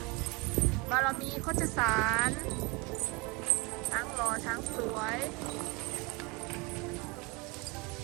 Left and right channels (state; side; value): quieter; left; 27.6 dB